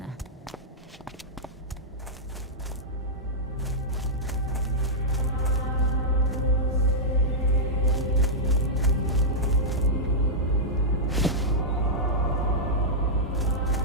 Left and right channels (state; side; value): normal; both; correlation -0.09